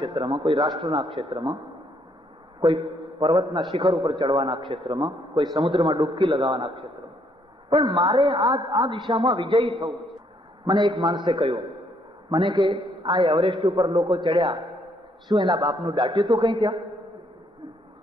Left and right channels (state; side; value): normal; both; correlation 0.70